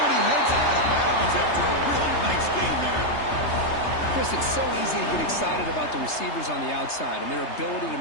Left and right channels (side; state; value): right; late; 3.3 ms